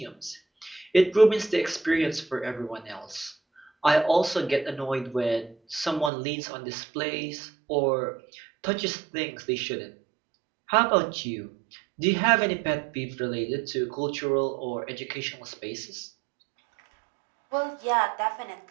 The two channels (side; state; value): left; drops out; at 6.1 s